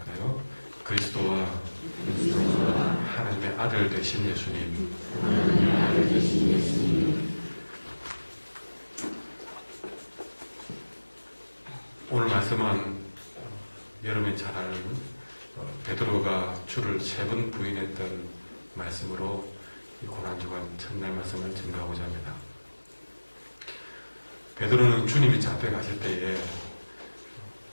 그리스도와 하나님의 아들 되신 예수님. 오늘 말씀은 여러분이 잘 아는 베드로가 주를 3번 부인했던 말씀으로 이 고난주간 첫날 말씀을 증거하고자 합니다. 베드로는 주님이 잡혀가실 때에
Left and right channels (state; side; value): inverted; both; correlation -1.00